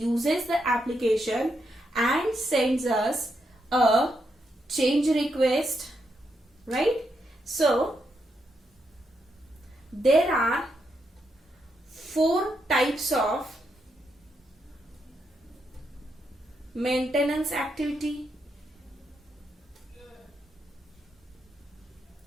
the application and sends us a change request, right? So there are 4 types of maintenance activity,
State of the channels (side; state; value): both; normal; correlation 0.81